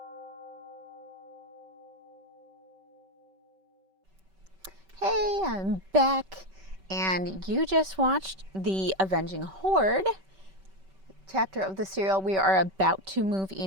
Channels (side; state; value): left; late; 5.2 ms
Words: Hey, I'm back, and you just watched the Avenging Horde chapter of the serial. We are about to move